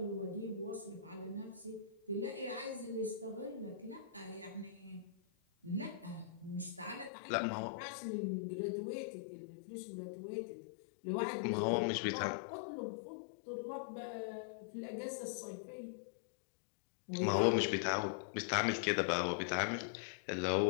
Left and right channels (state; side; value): drops out; right; at 7.1 s